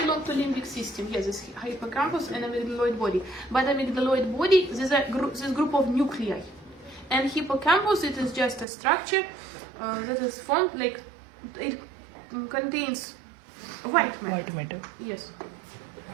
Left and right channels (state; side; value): drops out; left; at 8.7 s